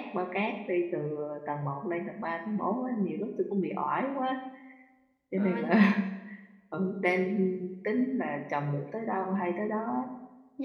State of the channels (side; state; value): both; identical; correlation 1.00